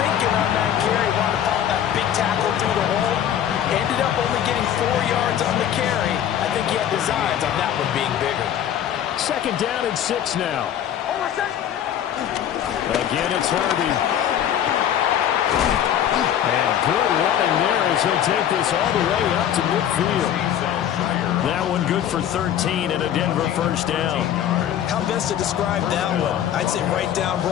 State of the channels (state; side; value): quieter; right; 10.2 dB